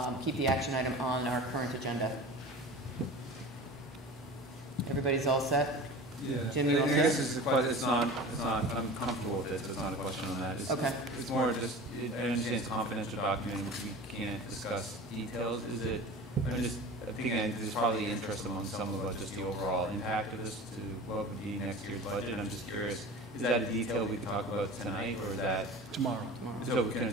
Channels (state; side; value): normal; both; correlation 0.36